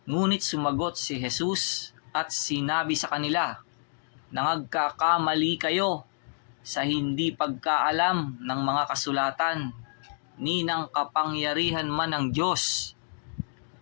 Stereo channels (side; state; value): right; silent; digital silence